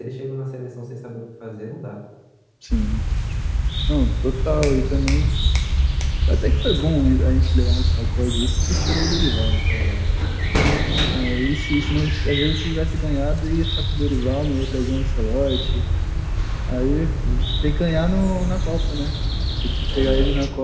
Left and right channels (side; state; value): both; identical; correlation 1.00